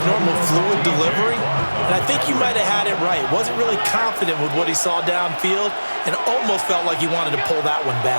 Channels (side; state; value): both; inverted; correlation -1.00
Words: normal fluid delivery. And I think you might have had it right. Wasn't really confident with what he saw downfield and almost felt like he wanted to pull that one